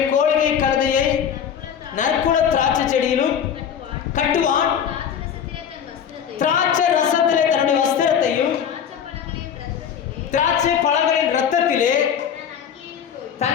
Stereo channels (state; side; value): quieter; right; 8.2 dB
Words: கோழிகை கழுதையை நற்குல திராட்சை செடியிலும் கட்டுவான். திராட்சை ரசத்திலே தன்னுடைய வஸ்திரத்தையும் திராட்சை பழங்களின் ரத்தத்திலே